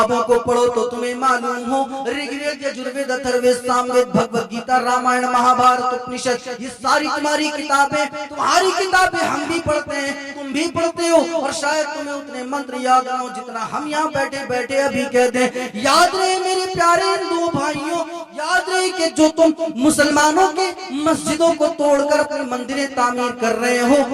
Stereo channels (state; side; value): identical; both; correlation 1.00